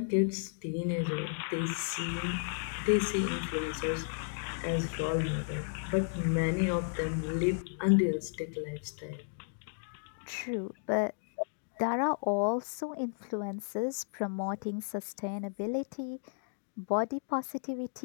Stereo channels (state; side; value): silent; right; digital silence